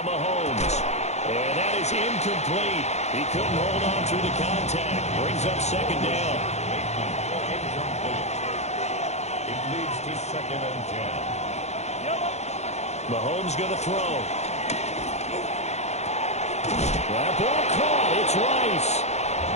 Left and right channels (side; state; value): right; late; 0.32 ms